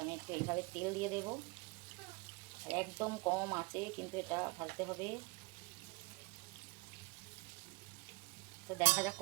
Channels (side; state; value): left; quieter; 26.0 dB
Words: আমি একটু এইভাবে তেল দিয়ে দেবো, আর একদম কম আঁচে কিন্তু এটা ভাজতে হবে। তো দেখা যাক